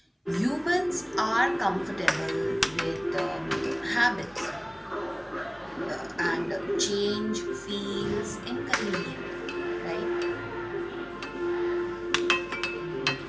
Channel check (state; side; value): identical; both; correlation 1.00